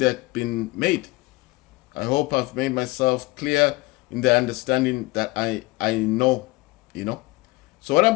being made. I hope I've made myself clear in the understanding that I know, So what I'm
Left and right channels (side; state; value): right; quieter; 22.7 dB